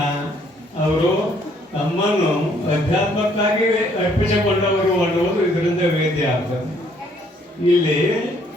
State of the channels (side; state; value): both; normal; correlation 0.65